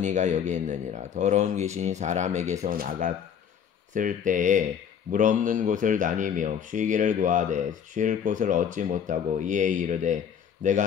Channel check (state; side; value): quieter; right; 8.0 dB